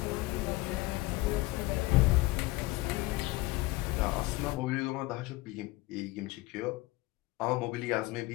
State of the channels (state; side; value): quieter; right; 20.0 dB